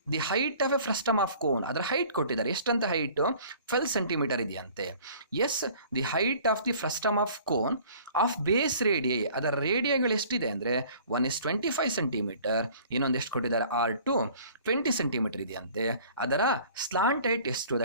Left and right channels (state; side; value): inverted; both; correlation -0.50